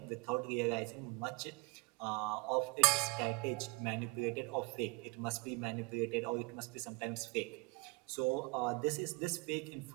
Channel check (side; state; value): left; quieter; 26.0 dB